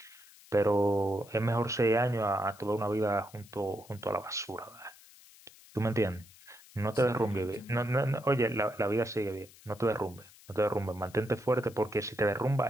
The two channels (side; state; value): left; noise; hiss, 23 dB below the sound